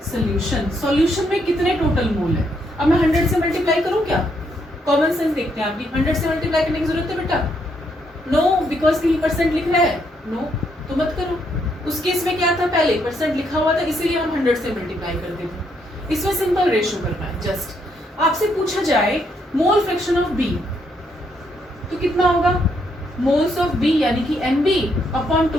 solution. Solution में कितने टोटल मोल है, अब मैं 100 से मल्टीप्लाई करूं क्या, कॉमन सेंस देखते हैं, आपकी 100 से मल्टीप्लाई करने की जरूरत है बेटा, नो, बिकॉज कहीं परसेंट लिख रहा है, नो, तो मत करो। उस केस में क्या था, पहले परसेंट लिखा हुआ था, इसीलिए हम 100 से मल्टीप्लाई करते थे। इसमें सिंपल रेशियो करना है, जस्ट आपसे पूछा जाए मोल फ्रैक्शन ऑफ बी, तो कितना होगा, मोल्स ऑफ बी यानी कि N B upon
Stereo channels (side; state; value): both; normal; correlation 0.75